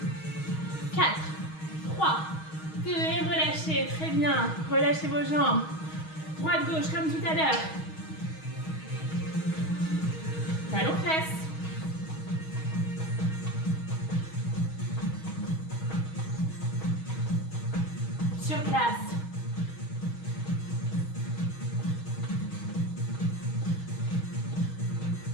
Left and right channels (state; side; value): late; right; 6.3 ms